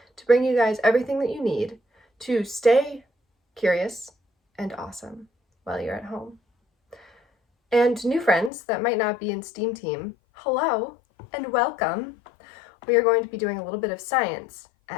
to bring you guys everything that you need to stay curious and awesome while you're at home. And new friends that might not be in STEAM team, hello and welcome. We are going to be doing a little bit of science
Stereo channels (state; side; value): drops out; right; at 8.5 s